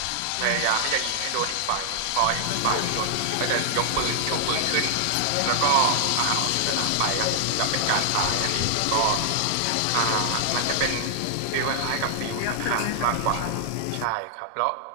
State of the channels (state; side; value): different; both; correlation 0.00